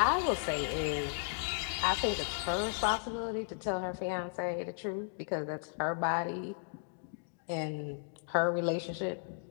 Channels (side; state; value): right; silent; digital silence